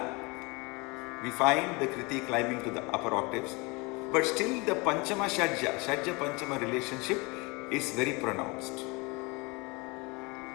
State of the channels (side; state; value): right; quieter; 27.0 dB